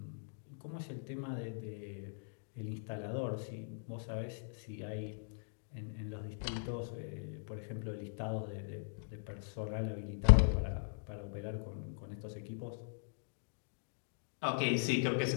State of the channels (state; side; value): silent; right; digital silence